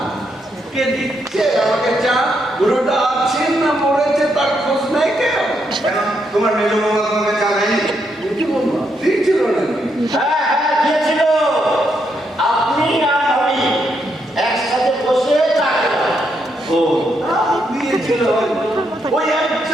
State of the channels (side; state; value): both; normal; correlation 0.78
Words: কে দিচ্ছে আমাকে চা? বুড়োটা আছেন না মরেছে তার খোঁজ নাই কেন? কেন তোমার মেজো বৌমা তোমাকে চা দেয়নি? বুঝি বলবো দিয়েছিল নাকি? হ্যাঁ হ্যাঁ দিয়েছিল। আপনি আর আমি একসাথে বসে চা খেলাম। ও দিয়েছিল হয়তো। ওই